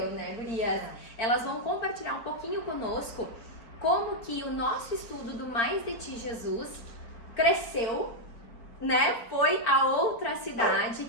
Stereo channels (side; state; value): right; late; 4.4 ms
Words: né, gurias? Elas vão compartilhar um pouquinho conosco como que o nosso estudo do Mais de Ti, Jesus cresceu, né? Foi a outra cidade